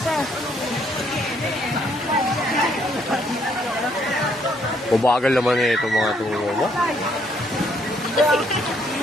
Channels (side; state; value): both; normal; correlation 0.69